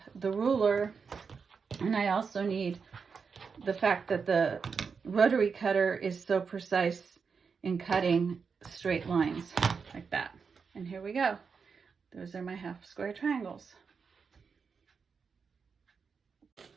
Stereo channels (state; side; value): quieter; left; 5.6 dB